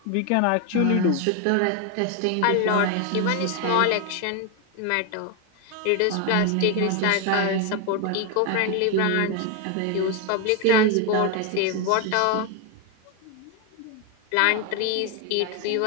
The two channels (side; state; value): both; different; correlation 0.01